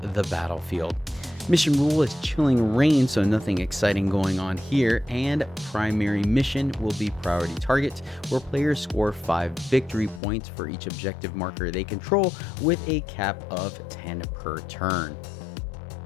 the battlefield. Mission rule is Chilling Rain, so nothing exciting going on here, and primary mission will be Priority Targets, where players score 5 victory points for each objective marker they control, with a cap of 10 per turn.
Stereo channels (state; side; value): drops out; right; at 10.2 s